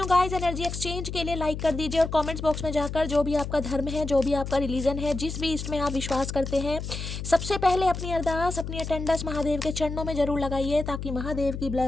गाइस, एनर्जी एक्सचेंज के लिए लाइक कर दीजिए और कमेंट्स बॉक्स में जाकर जो भी आपका धर्म है, जो भी आपका रिलीजन है, जिस भी इसमें आप विश्वास करते हैं, सबसे पहले अपनी अरदास, अपनी अटेंडेंस महादेव के चरणों में जरूर लगाइए, ताकि महादेव की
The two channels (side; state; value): left; noise; hum, 6 dB below the sound